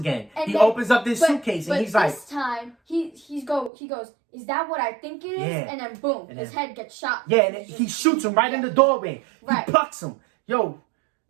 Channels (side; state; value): left; drops out; at 3.7 s